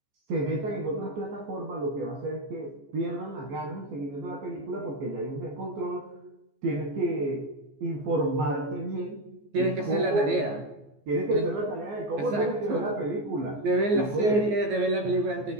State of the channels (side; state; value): left; late; 14 ms